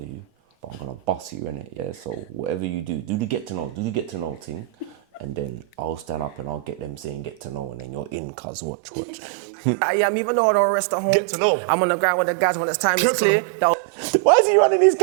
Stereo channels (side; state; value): left; drops out; at 8.2 s